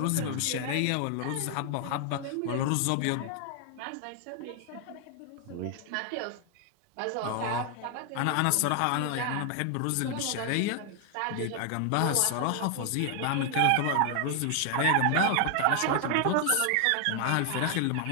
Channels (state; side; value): different; both; correlation 0.00